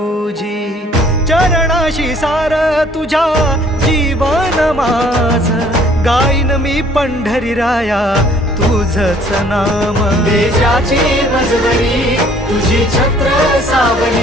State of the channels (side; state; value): both; normal; correlation 0.58